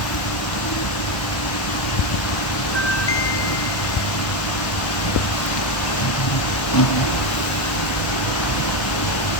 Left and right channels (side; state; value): right; late; 1.2 ms